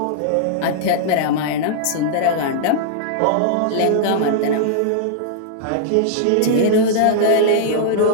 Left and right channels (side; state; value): both; different; correlation -0.02